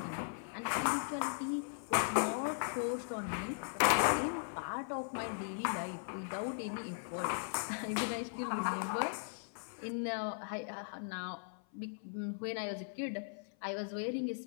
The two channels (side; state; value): right; silent; 52 dB below the other